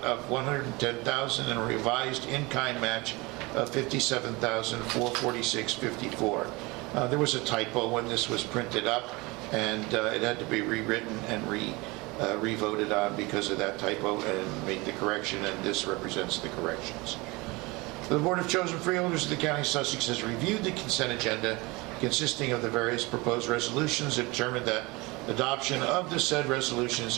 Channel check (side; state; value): left; quieter; 24.2 dB